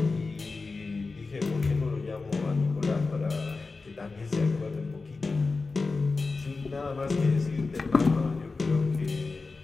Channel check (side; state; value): right; quieter; 4.0 dB